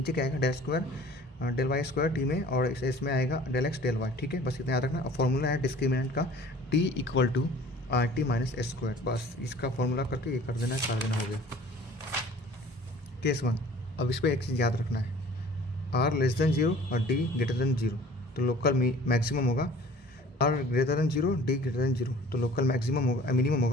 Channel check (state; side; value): normal; both; correlation 0.48